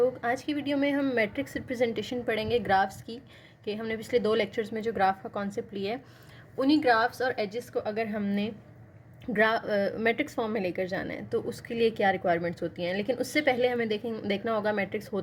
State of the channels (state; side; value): identical; both; correlation 1.00